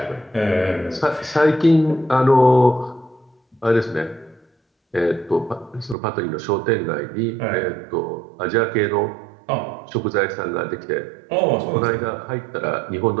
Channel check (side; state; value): left; drops out; at 6.0 s